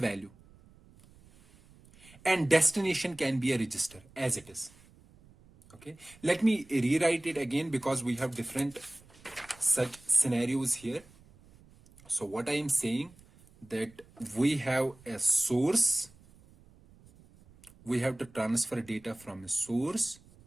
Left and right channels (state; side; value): noise; right; rumble, 26 dB below the sound